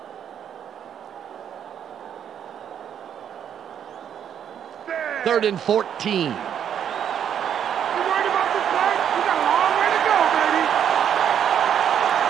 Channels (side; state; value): left; quieter; 9.0 dB